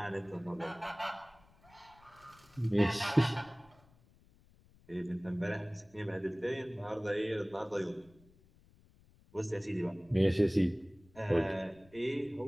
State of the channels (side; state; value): left; noise; rumble, 28 dB below the sound